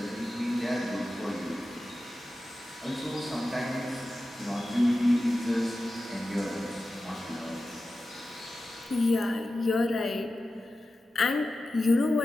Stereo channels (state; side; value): normal; both; correlation 0.93